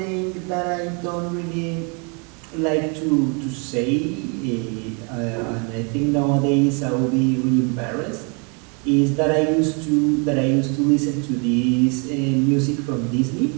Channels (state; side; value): quieter; left; 34.8 dB